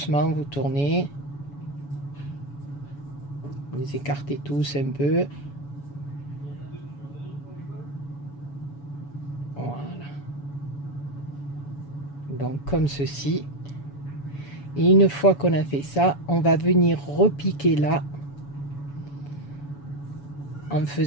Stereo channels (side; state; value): right; late; 7.1 ms